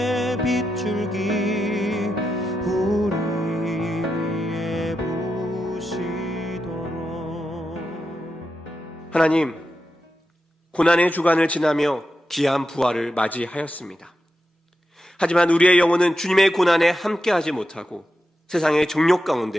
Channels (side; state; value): both; normal; correlation 0.88